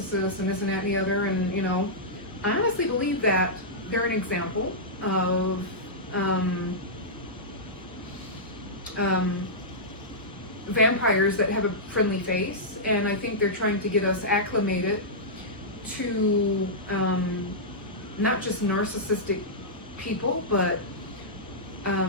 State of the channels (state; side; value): normal; both; correlation -0.13